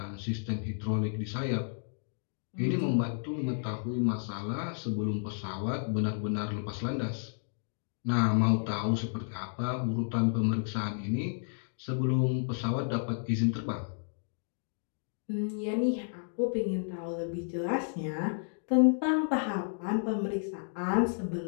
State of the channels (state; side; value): silent; right; digital silence